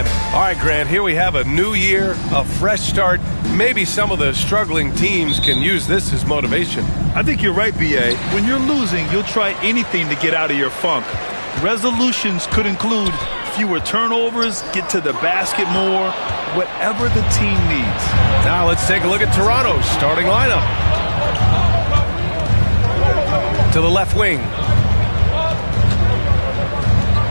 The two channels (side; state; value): both; inverted; correlation -1.00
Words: all right, Grant, here we have a new year, a fresh start. Maybe some of the struggling teams can use this as motivation. I think you're right, B.A. When you're losing, you'll try anything to get out of your funk. Resolutions could include fewer turnovers, get to the basket more, whatever the team needs. Now let's take a look at Toronto's starting lineup. To the left wing.